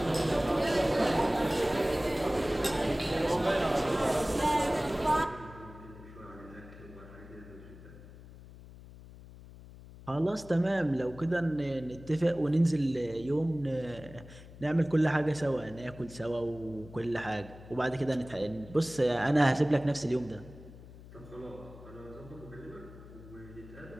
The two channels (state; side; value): noise; left; hum, 18 dB below the sound